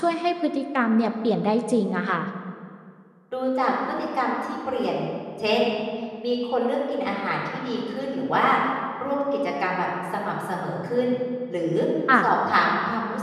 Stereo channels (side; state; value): both; identical; correlation 1.00